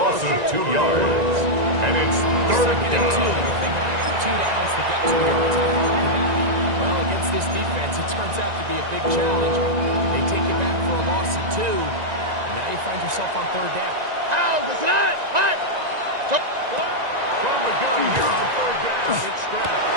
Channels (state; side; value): late; left; 1.9 ms